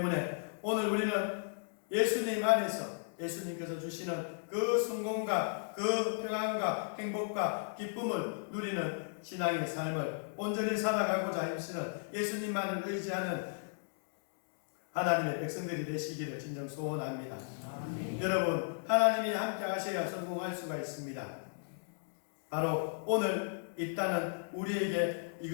오늘 우리는 예수님 안에서 예수님께서 주시는 그 성공과 그 평안과 행복과 기쁨을 누리는 신앙의 삶을 온전히 살아가고자 힘쓰는 예수님만을 의지하는 하나님의 백성들이 되시기를 진정 소원합니다. 여러분 하나님이 함께 하셔야 성공할 수가 있습니다. 바로 오늘 입다는 우리에게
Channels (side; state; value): right; silent; digital silence